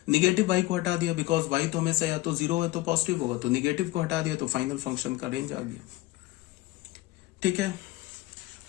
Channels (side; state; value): right; quieter; 18.7 dB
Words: निगेटिव y को हटा दिया, बिकॉज y तो हमेशा या तो 0 है तो पॉजिटिव होगा, तो निगेटिव को हटा दिया, तो फाइनल फंक्शन का रेंज आ गया, ठीक है।